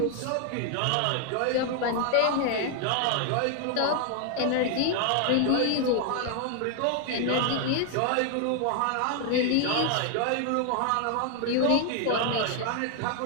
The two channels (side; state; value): both; different; correlation 0.00